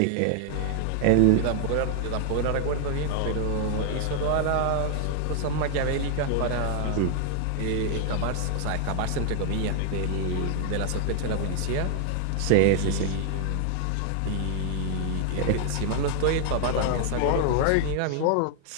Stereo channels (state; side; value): different; both; correlation 0.00